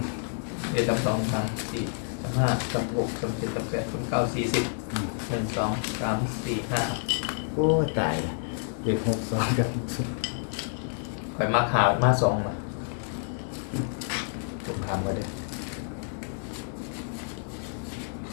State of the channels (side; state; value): right; silent; digital silence